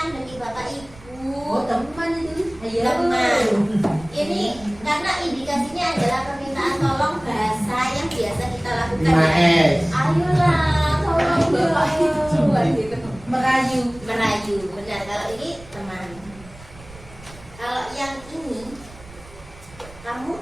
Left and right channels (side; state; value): right; noise; rumble, 20 dB below the sound